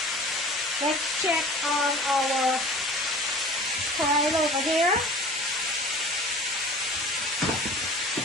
Let's check on our Karela over here.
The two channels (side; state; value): both; normal; correlation 0.43